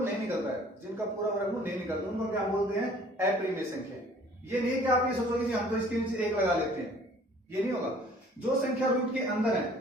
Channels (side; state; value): both; normal; correlation 0.53